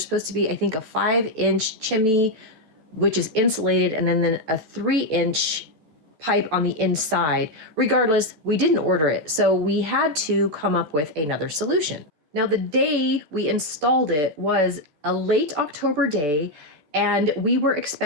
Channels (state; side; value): late; left; 14 ms